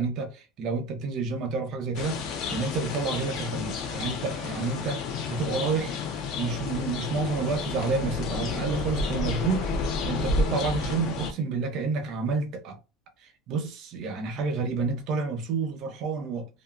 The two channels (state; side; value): normal; both; correlation 0.35